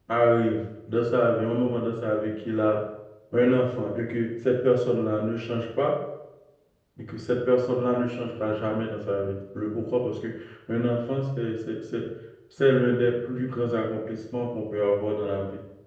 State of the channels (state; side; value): identical; both; correlation 1.00